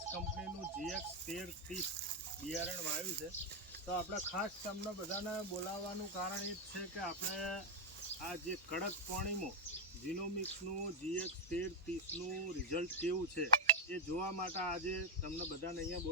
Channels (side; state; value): both; normal; correlation 0.02